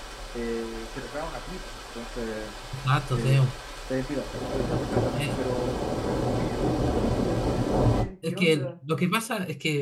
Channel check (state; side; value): identical; both; correlation 1.00